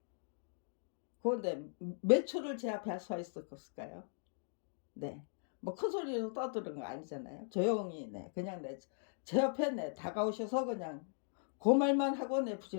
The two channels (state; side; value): silent; right; digital silence